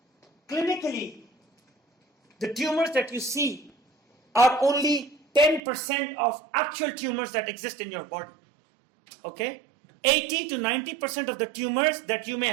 Clinically, the tumors that you see are only 10% of actual tumors that exist in your body. Okay? 80 to 90% of the tumors that you may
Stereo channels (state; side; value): drops out; left; at 5.6 s